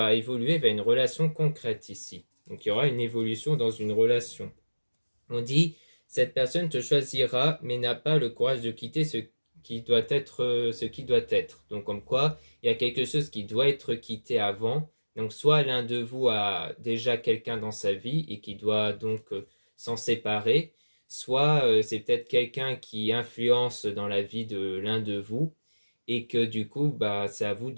évoluer vers une relation concrète ici. Donc il y aura une évolution dans une relation. On dit cette personne te choisira mais n'a pas le courage de quitter ce qui doit être. Donc comme quoi, il y a quelque chose qui doit être quitté avant. Donc soit l'un de vous a déjà quelqu'un dans sa vie et qui doit donc s'en séparer, soit c'est peut-être quelqu'un qui influence dans la vie de l'un de vous et que du coup, c'est à vous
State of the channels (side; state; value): both; inverted; correlation -1.00